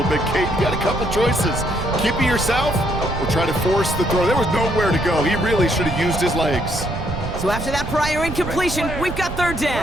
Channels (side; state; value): right; noise; rumble, 7 dB below the sound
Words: bit. Kate, you got a couple choices. Keep it yourself or try to force the throw. There was nowhere to go. He really should have used his legs. So after that prior incompletion, we've got 3rd